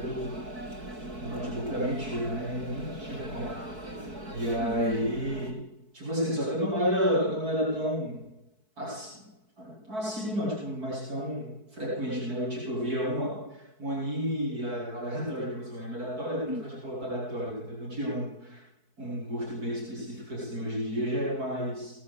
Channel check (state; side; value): late; left; 4.6 ms